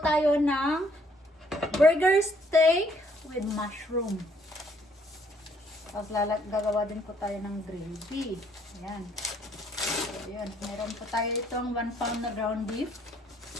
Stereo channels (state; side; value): normal; both; correlation 0.66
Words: tayo ng burger steak with mushroom. Tapos gagawa din po tayo ng gravy. Ayan. So, ayan. Meron po tayo itong 1 pound na ground beef.